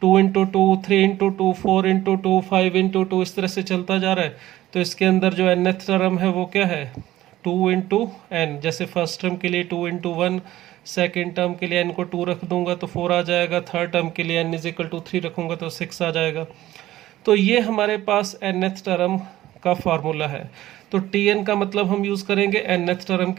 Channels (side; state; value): left; quieter; 14.9 dB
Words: 2 into 2 3 into 2 4 into 2 5 into 2 इस तरह से चलता जा रहा है। तो इसके अंदर जो nth टर्म है वो क्या है, 2 इंटू n। जैसे फर्स्ट टर्म के लिए 2 इंटू 1, सेकेंड टर्म के लिए n को 2 रख दूंगा तो 4 आ जाएगा, थर्ड टर्म के लिए n इज इक्वल टू 3 रखूंगा तो 6 आ जाएगा। तो ये हमारे पास nth टर्म का फार्मूला है। तो tn का मतलब हम यूज़ करेंगे nth टर्म